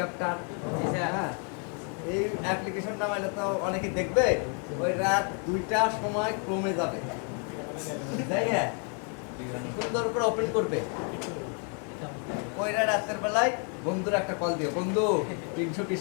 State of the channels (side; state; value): right; quieter; 39.9 dB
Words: হ্যাঁ এই অ্যাপ্লিকেশন নামাইলে তো অনেকে দেখবে ওই রাত 2টার সময় ক্রমে যাবে তাই হ্যাঁ সুন্দর করে ওপেন করবে ওই রাতের বেলায় বন্ধুর একটা কল দিও বন্ধু